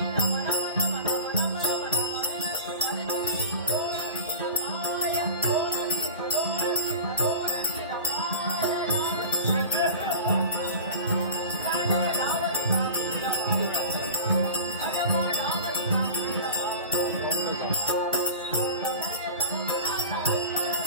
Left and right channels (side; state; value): both; inverted; correlation -0.33